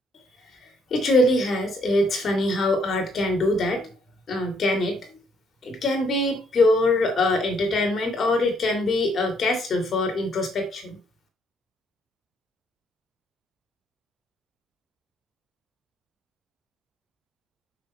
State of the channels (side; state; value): both; normal; correlation 0.69